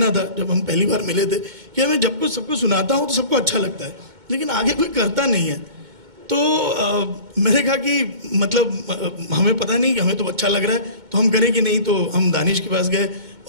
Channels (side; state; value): left; late; 2.2 ms